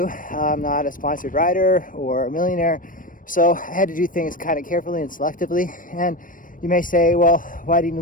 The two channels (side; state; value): right; late; 0.39 ms